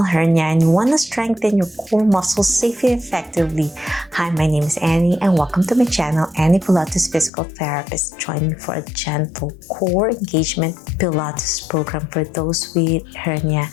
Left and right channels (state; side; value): drops out; right; at 7.3 s